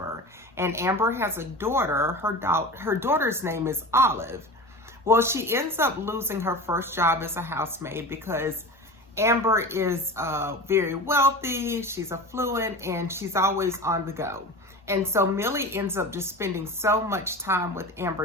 And Amber has a daughter. Her daughter's name is Olive. Well, she ends up losing her first job as a housemaid because Amber is very wealthy, she's affluent, and she's always on the go. And so Millie ends up just spending so much time with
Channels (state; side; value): normal; both; correlation 0.32